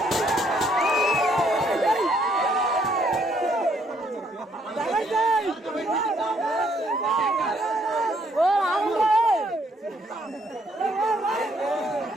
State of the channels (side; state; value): both; normal; correlation 0.69